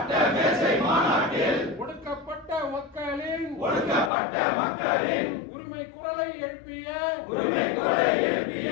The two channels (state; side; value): drops out; right; at 4.1 s